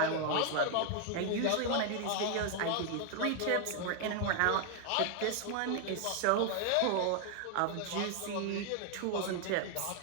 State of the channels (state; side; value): different; both; correlation 0.00